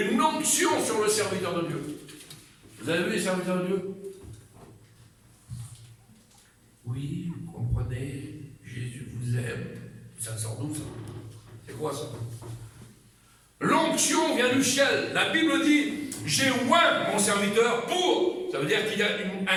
onction sur le serviteur de Dieu. Vous avez vu les serviteurs de Dieu? Oui, vous comprenez, Jésus vous aime. Ça sort d'où ça? C'est quoi ça? L'onction vient du ciel. La Bible dit, j'ai oint mon serviteur pour. Ça veut dire qu'il y a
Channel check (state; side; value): identical; both; correlation 1.00